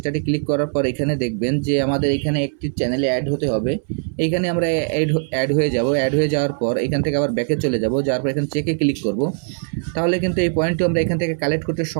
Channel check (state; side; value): silent; left; 64 dB below the other